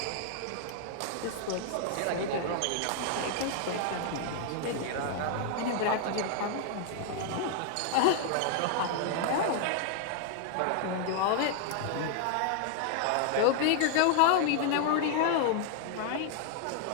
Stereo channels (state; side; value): different; both; correlation 0.00